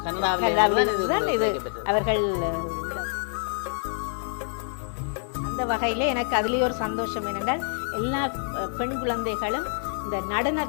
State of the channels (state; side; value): silent; right; 61 dB below the other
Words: கனடாவில் இது அவர்கள். அந்த வகையில் எனக்கு அதுலேயே ஒரு சந்தோஷம் என்னென்றால் எல்லா பெண் குழந்தைகளும் இந்த